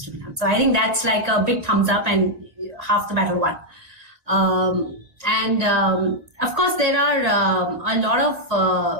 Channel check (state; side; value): late; left; 1.9 ms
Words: to be done. So I think that's like a big thumbs up and half the battle won. Of course, there are a lot of